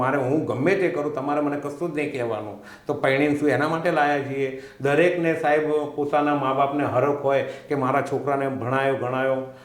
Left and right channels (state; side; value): identical; both; correlation 1.00